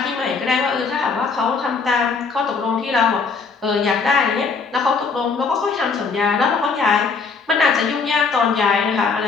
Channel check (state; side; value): quieter; right; 4.9 dB